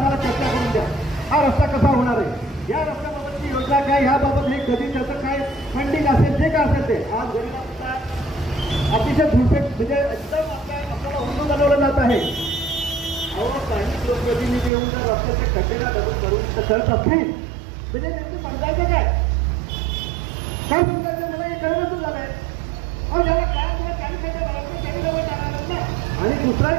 चर्चा करून द्या. हा रस्ता कसा होणार आहे, या रस्त्याबाबतची योजना काय, ह्याबाबत हे कधी त्याचं काय फंडिंग असेल जे काय असेल ते. आज गरीबांचा अतिशय झुलपेट म्हणजे एकदम आपल्याला हुंदून बनवलं जात आहे. काही लोकप्रतिनिधी येऊन जर रस्त्याच्या खड्डेला दगड करून करत असतील म्हणजे त्यांचं समजायचं काय समजायचं मला हे कळवतच झालंय. अहो ज्याला काय किंवा त्यांनी खड्डे भरायचं त्यांनी जवळ टाकणार ना. आणि दुसरा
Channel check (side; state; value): left; drops out; at 14.7 s